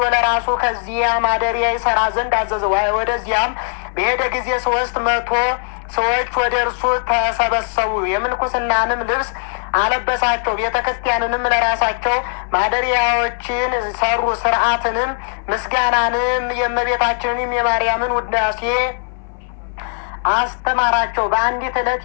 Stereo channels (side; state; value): right; silent; 60 dB below the other